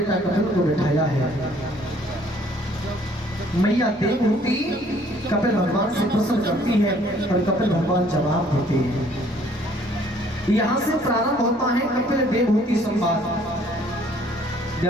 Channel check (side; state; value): both; normal; correlation 0.60